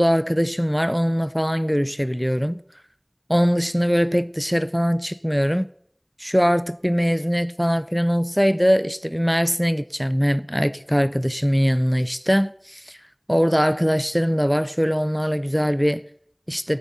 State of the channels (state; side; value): identical; both; correlation 1.00